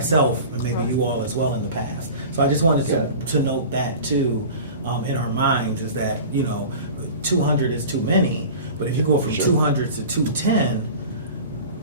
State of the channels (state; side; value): inverted; both; correlation -0.37